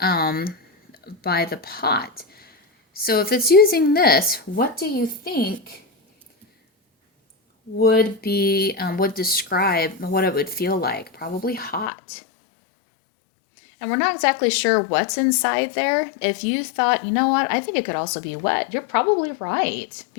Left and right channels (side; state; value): right; drops out; at 11.9 s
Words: by the pot. So if it's using this, what do you think would describe what it would feel like? Probably hot. And we're not exactly sure what's inside there. If you thought, you know what, I think it could also be wet, you're probably right,